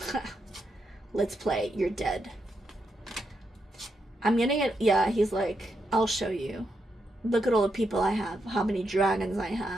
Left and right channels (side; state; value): both; normal; correlation 0.82